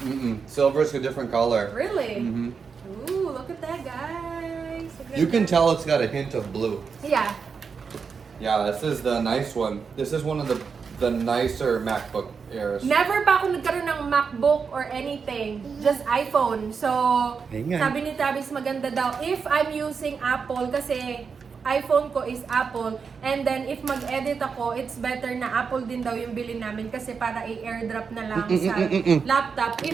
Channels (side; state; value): left; quieter; 5.7 dB